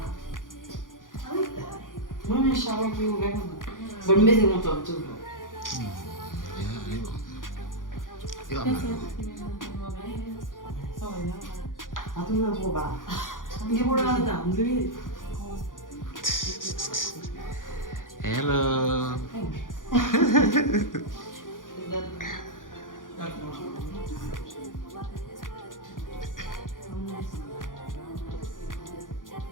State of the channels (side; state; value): right; late; 0.89 ms